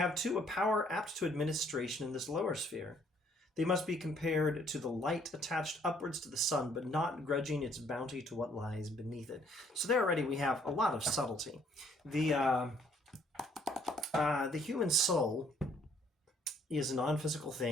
too a power apt to administration in this lower sphere. They must be compared to the light attached upwards to the sun, but not grudging its bounty to what lies beneath it." So there already we have a lot of subtlety. The human soul is a non-physical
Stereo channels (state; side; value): normal; both; correlation 0.63